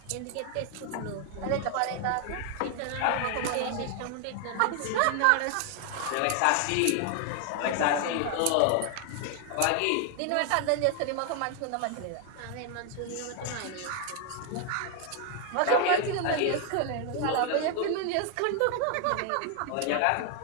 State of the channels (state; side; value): different; both; correlation 0.00